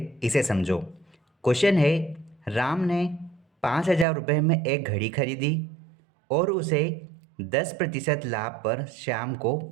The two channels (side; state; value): left; drops out; at 4.0 s